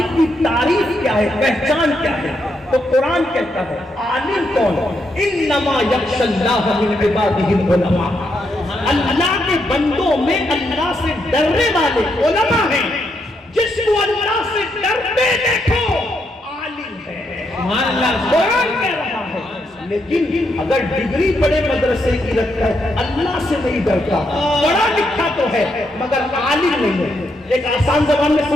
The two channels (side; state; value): both; normal; correlation 0.79